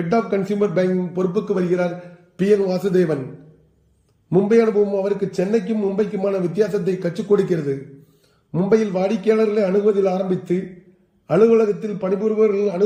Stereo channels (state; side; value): identical; both; correlation 1.00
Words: ஆஃப் கன்சியூமர் பேங்கிங் பொறுப்புக்கு வருகிறார் PN வாசுதேவன். மும்பை அனுபவம் அவருக்கு சென்னைக்கும் மும்பைக்குமான வித்தியாசத்தை கற்றுக் கொடுக்கிறது. மும்பையில் வாடிக்கையாளர்களை அணுகுவதில் ஆரம்பித்து அலுவலகத்தில் பணிபுரிபவர்கள்